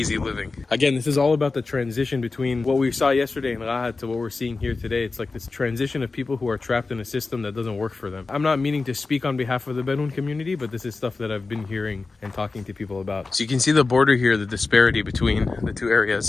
living. Again, this is all about the transition between what we saw yesterday in Rahat to what we're seeing here today. It's like this transition of people who are trapped in a system that doesn't work for them. I'm not meaning to speak on behalf of the Bedouin community, but this is stuff that I've been hearing and talking to people about. So you can see the border here, the disparity between the two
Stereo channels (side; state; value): right; quieter; 3.9 dB